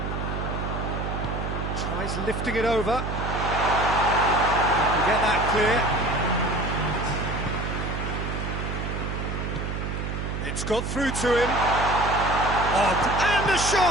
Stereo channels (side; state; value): right; noise; hum, 4 dB below the sound